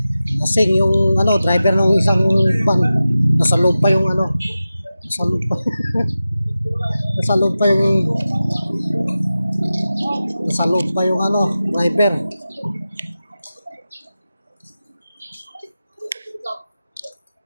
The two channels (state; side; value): inverted; both; correlation -0.94